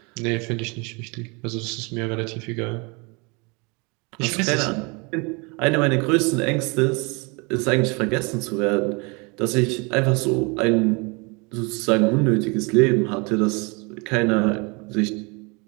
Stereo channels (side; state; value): left; quieter; 29.9 dB